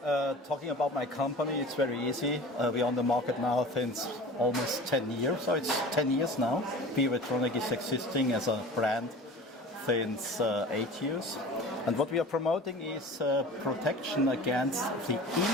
talking about my company, it's very easy. We're on the market now since almost 10 years, so it's 10 years now. Biovitronic is existing as a brand since 8 years. And what we are promoting is protection against the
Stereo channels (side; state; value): both; normal; correlation 0.39